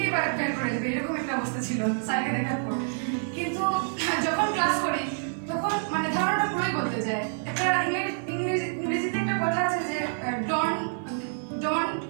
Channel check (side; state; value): left; silent; 60 dB below the other